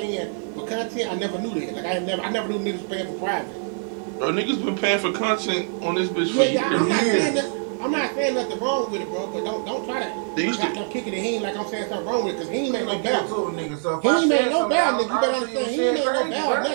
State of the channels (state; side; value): silent; left; 61 dB below the other